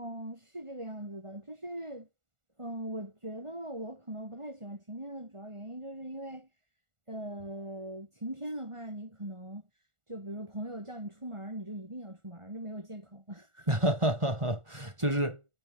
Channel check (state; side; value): late; left; 1.4 ms